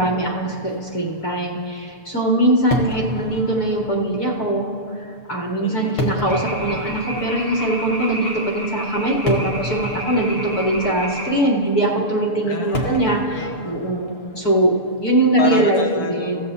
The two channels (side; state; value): right; late; 6.8 ms